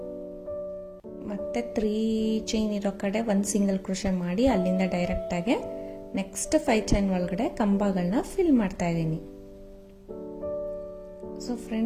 ಮತ್ತೆ 3 ಚೈನ್ ಇರೋ ಕಡೆ 1 ಸಿಂಗಲ್ ಕ್ರೋಶೆ ಮಾಡಿ ಅಲ್ಲಿಂದ ಡೈರೆಕ್ಟಾಗಿ ನೆಕ್ಸ್ಟ್ 5 ಚೈನ್ ಒಳಗಡೆ ಕಂಬಗಳನ್ನ ಫಿಲ್ ಮಾಡ್ತಾ ಇದ್ದೀನಿ. ಸೊ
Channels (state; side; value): identical; both; correlation 1.00